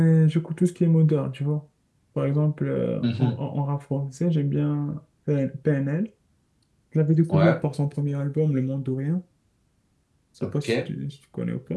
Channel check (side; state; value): both; identical; correlation 1.00